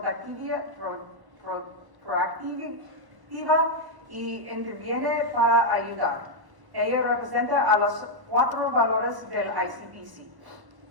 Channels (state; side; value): late; left; 1.1 ms